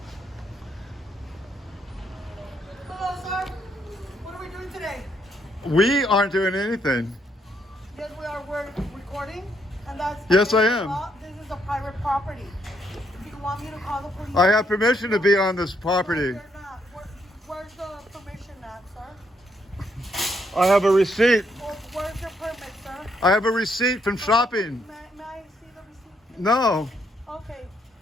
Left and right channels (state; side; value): normal; both; correlation 0.74